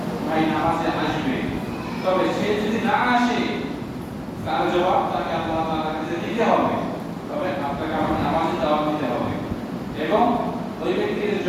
ভাই নামাজে আসবে, তবে সে যদি না আসে তার জবাব তাকে আল্লাহ তাআলার কাছে দিতে হবে। তবে আপনাকে আমার নামাজের দাওয়াত দিতে হবে এবং ওই ব্যক্তির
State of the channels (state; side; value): identical; both; correlation 1.00